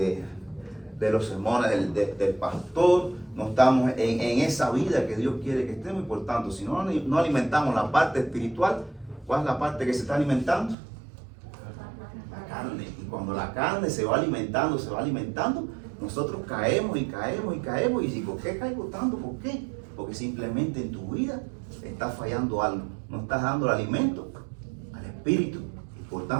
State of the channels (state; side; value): drops out; left; at 10.8 s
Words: los sermones del pastor, no estamos en esa vida que Dios quiere que estemos. Y por tanto, si no alimentamos la parte espiritual, ¿cuál es la parte que se está alimentando? La carne. Y cuando la carne se va alimentando, nosotros caemos. ¿Y por qué caigo tanto? ¿Por qué? Porque simplemente en tu vida está fallando algo. No estás dando el alimento al espíritu. Y por